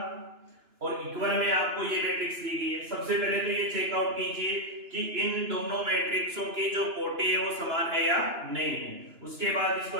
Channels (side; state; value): left; late; 2.9 ms